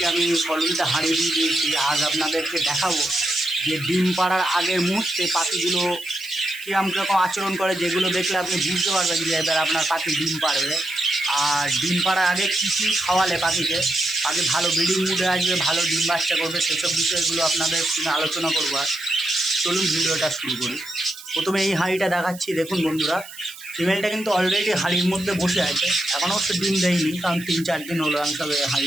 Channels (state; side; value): noise; right; hiss, 17 dB below the sound